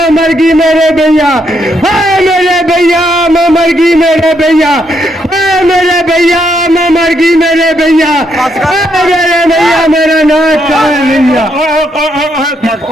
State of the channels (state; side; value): normal; both; correlation 0.76